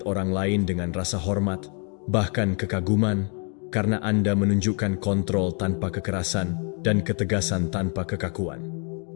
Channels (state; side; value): quieter; right; 39.8 dB